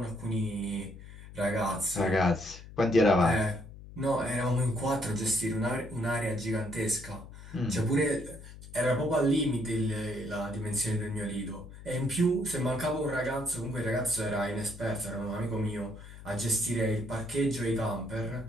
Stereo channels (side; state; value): left; noise; hum, 16 dB below the sound